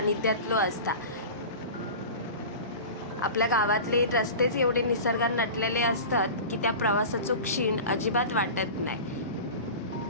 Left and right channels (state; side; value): inverted; both; correlation -0.33